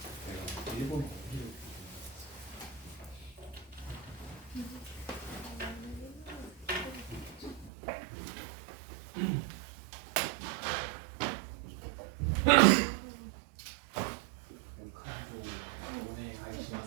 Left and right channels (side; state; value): left; drops out; at 7.7 s